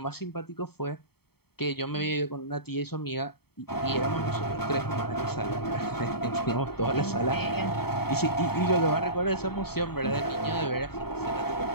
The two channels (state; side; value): late; right; 0.96 ms